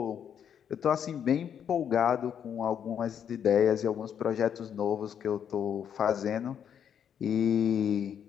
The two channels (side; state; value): right; quieter; 8.5 dB